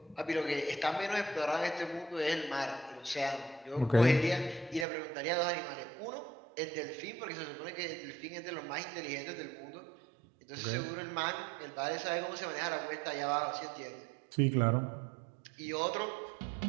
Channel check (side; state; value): left; drops out; at 4.9 s